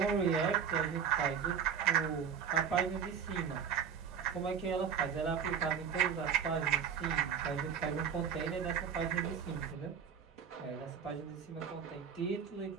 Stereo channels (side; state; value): left; quieter; 7.3 dB